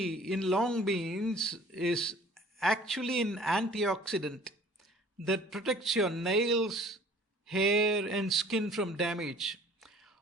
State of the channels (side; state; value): both; normal; correlation 0.50